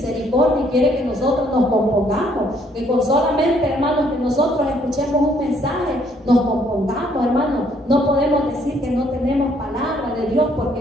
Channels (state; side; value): normal; both; correlation 0.66